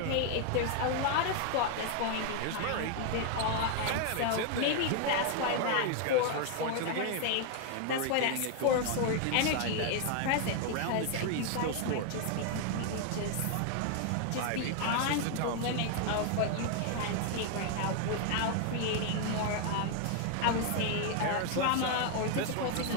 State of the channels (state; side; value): different; both; correlation 0.00